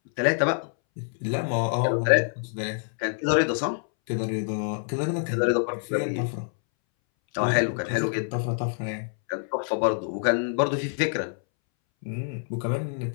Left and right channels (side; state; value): right; silent; 61 dB below the other